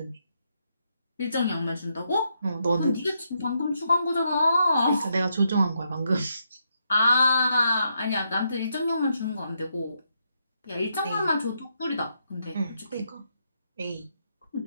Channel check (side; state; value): both; inverted; correlation -0.79